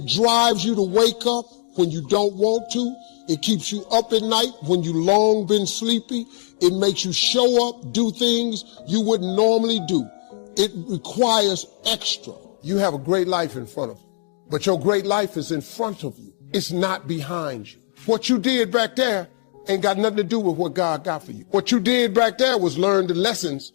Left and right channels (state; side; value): silent; right; digital silence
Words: drives you to wake up when you don't want to. It keeps you up at night when you long been sleepy. It makes you show up, do things you wouldn't normally do. It requires extra. You have a great life in front of you, but your great life is in front of you. It's not behind you. What you did back there ain't got nothing to do with what God got for you. What you did back there was learn the lessons